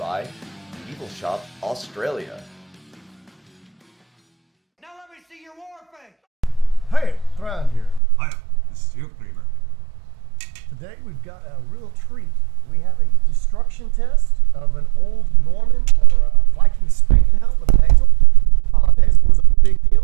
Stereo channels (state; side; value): drops out; left; at 8.0 s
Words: Medieval Shoppe Australia. Now let me see your war face! Hey, Thrand here. Hiya, this is Eldgrimr. Today we've got a real treat. We have a destruction test of an old Norman or Viking Spangenhelm with a nasal. Nasal was a big deal.